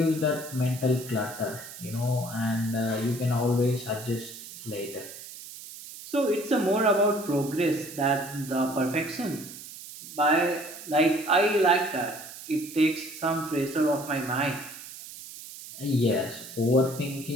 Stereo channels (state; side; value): noise; right; hiss, 14 dB below the sound